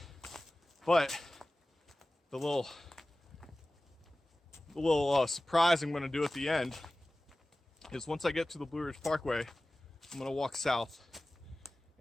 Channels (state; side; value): normal; both; correlation 0.97